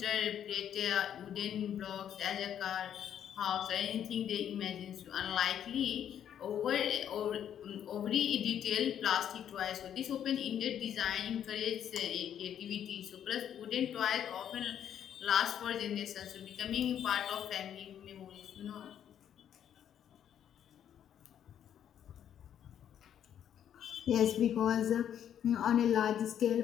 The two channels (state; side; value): quieter; right; 9.7 dB